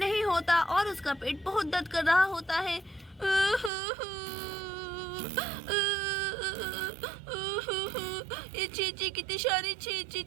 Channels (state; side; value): drops out; left; at 3.7 s